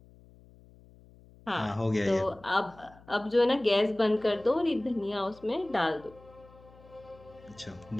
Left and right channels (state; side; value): noise; left; hum, 24 dB below the sound